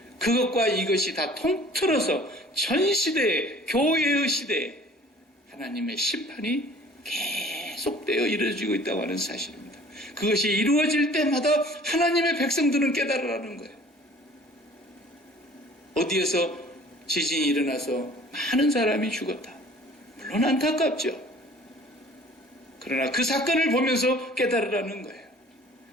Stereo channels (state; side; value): normal; both; correlation 0.50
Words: 그것과 이것이 다 통틀어서 전 시대에, 교회의 시대에 하나님의 심판이 계속되어 이루어지고 있다고 하는 사실입니다. 그것이 이루어질 때마다 하나님의 백성들은 깨달으라는 거예요. 어디에서 지진이 일어나서 많은 사람이 죽었다. 물론 안타깝죠. 그러나 그 사건을 보면서 깨달으라는 거예요.